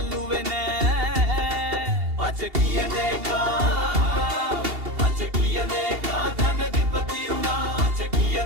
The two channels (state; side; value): late; left; 2.8 ms